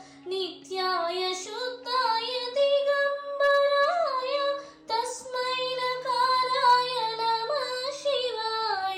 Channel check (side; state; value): both; identical; correlation 1.00